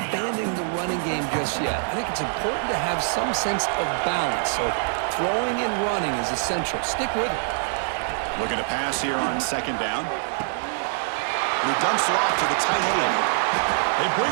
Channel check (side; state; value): left; silent; digital silence